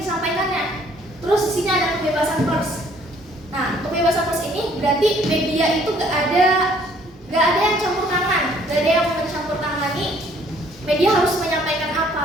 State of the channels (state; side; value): normal; both; correlation 0.61